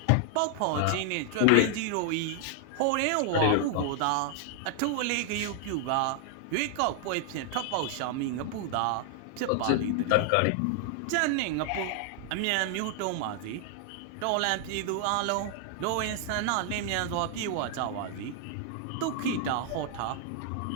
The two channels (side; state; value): both; different; correlation 0.00